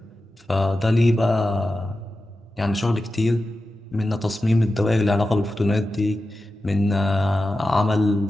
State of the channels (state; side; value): normal; both; correlation 0.92